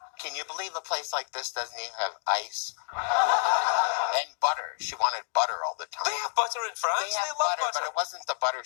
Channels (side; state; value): right; silent; digital silence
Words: Can you believe a place like this doesn't even have ice? And butter. She wanted butter all the time. They have butter in France? They have love butter, but it wasn't the butter